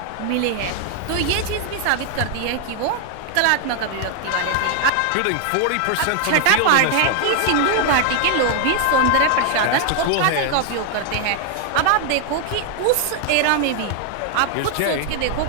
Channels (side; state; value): both; different; correlation 0.00